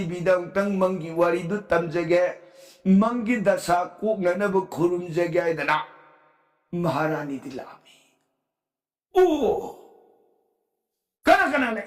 bidang tang manggi warido tamjage, manggi dasa ko nga nabakurum jage dana. Maharani dilami. Oo! Kana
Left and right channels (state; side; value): identical; both; correlation 1.00